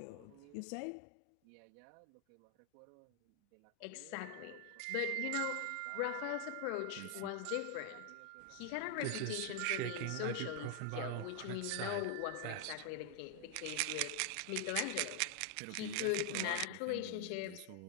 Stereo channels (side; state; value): both; different; correlation 0.00